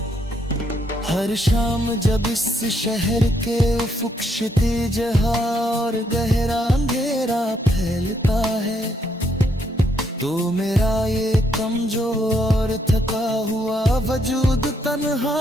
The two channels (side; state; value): both; normal; correlation 0.74